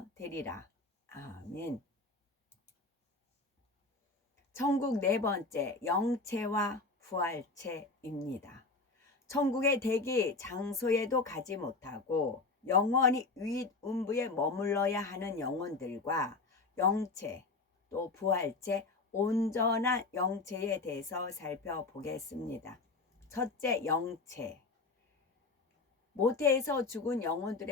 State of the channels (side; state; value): right; quieter; 3.7 dB